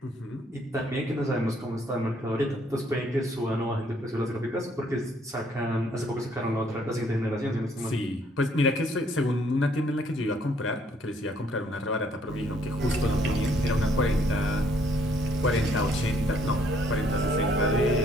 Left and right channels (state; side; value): normal; both; correlation 0.66